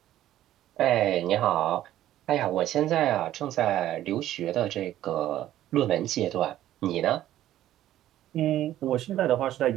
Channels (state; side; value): quieter; left; 13.1 dB